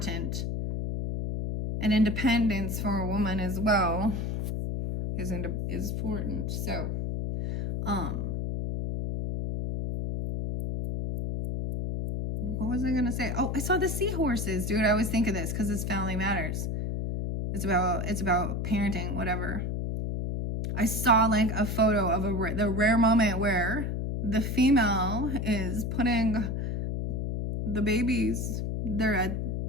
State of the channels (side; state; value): left; noise; hum, 2 dB below the sound